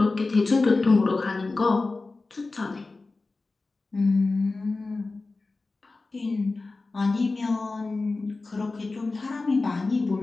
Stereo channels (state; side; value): quieter; right; 3.6 dB